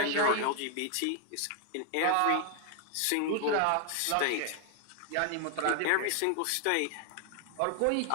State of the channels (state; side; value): different; both; correlation 0.00